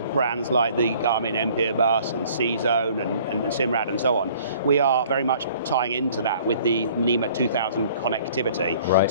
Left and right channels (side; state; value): both; inverted; correlation -0.54